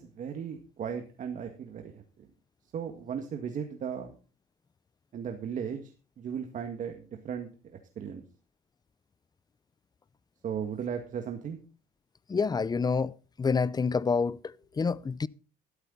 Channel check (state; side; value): normal; both; correlation 0.67